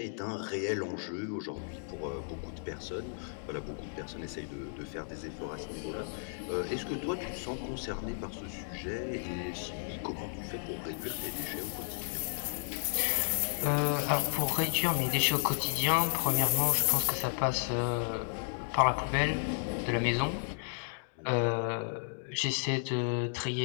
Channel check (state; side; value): silent; right; digital silence